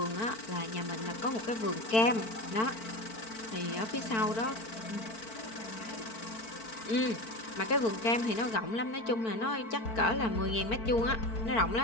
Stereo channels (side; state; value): right; late; 4.5 ms